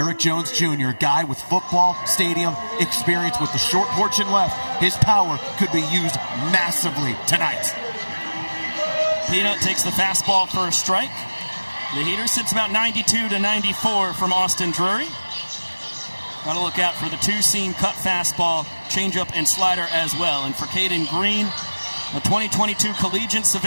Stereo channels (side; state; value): both; inverted; correlation -1.00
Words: Jones Jr., a guy with football stadium experience with the short porch and left, his power could be used massively tonight. Peanut takes the fastball for a strike. The heater sits about 92 to 94 from Austin Drury. Got to look out for the 2-seam cut fastball, changeup, and slider as well. And for Caden Green, a 2022 collegiate